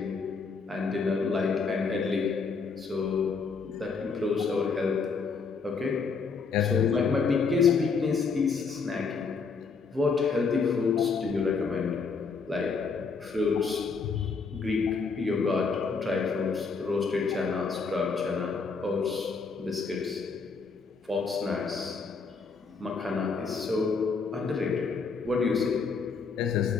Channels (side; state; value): right; quieter; 5.0 dB